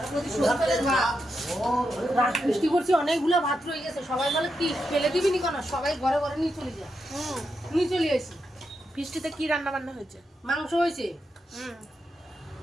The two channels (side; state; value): both; normal; correlation 0.85